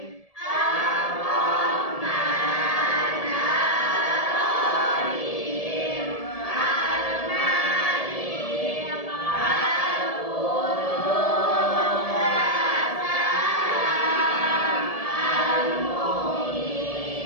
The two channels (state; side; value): late; right; 1.7 ms